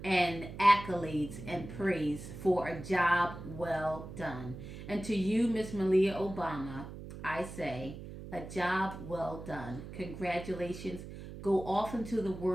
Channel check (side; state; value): right; noise; hum, 11 dB below the sound